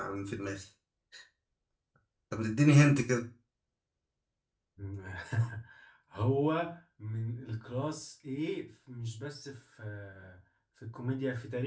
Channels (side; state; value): both; identical; correlation 1.00